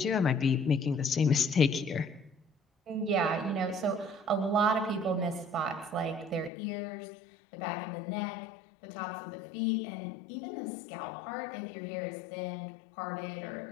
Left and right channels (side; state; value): right; drops out; at 6.5 s